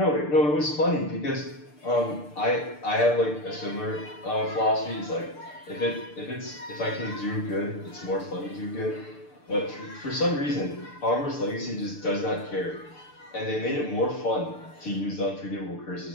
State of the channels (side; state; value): right; late; 6.8 ms